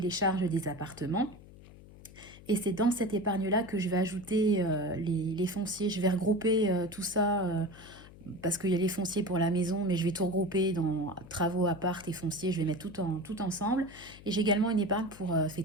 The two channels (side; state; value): left; noise; hum, 20 dB below the sound